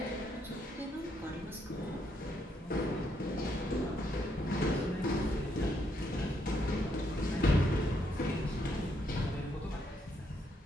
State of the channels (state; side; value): normal; both; correlation 0.75